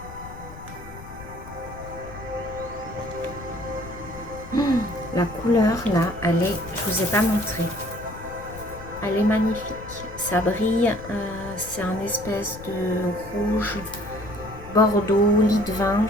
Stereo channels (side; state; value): left; noise; rumble, 15 dB below the sound